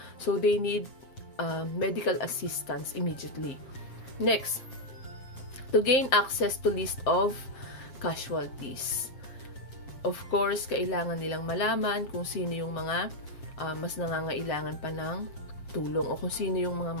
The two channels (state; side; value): late; right; 7.7 ms